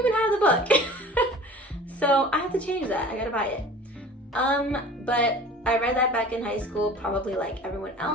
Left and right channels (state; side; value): normal; both; correlation 0.43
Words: have the book. So I have to change that. I gotta buy it. But I read that back in high school, probably like everyone